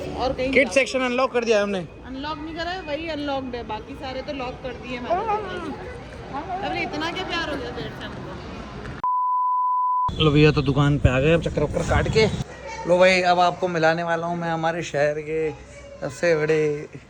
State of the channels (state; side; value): identical; both; correlation 1.00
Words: और कहीं किड सेक्शन अनलॉक कर दिया है हमने। अनलॉक नहीं करा है, वही अनलॉक्ड है, बाकी सारे तो लॉक कर दिए मैंने। अरे इतना क्या प्यार हो गया पेट से हमको। लो भैया तो दुकान पे आ गए, अब चक्कर वक्कर काट के। लो भाई अब आपको मिलाने वाला हूँ मैं हमारे शहर के सबसे बड़े